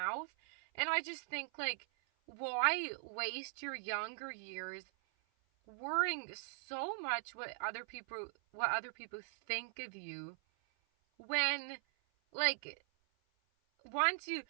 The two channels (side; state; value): left; silent; 51 dB below the other